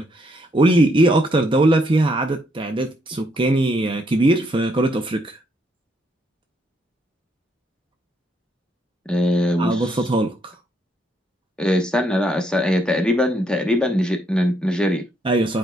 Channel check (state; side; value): normal; both; correlation 0.73